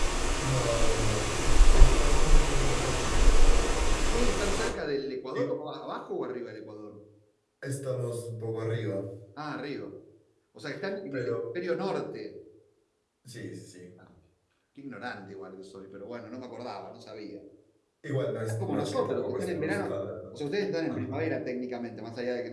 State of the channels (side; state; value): both; identical; correlation 1.00